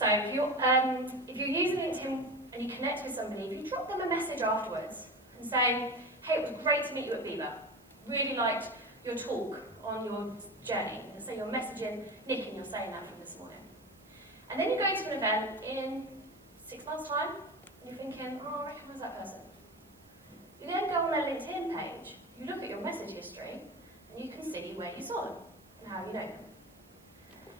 if you're using LinkedIn and you connect with somebody, if you drop them a message afterwards and saying, hey, it was great to meet you at BIBA. Really liked your talk on your journey. And say you're messaging Nick and you're saying that from this morning. And then you go to an event in 6 months' time and you're thinking, oh, I recognise that person. You then go on their LinkedIn page, you look at your message history, and you can see where you saw them and how you know them.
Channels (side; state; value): right; noise; hiss, 28 dB below the sound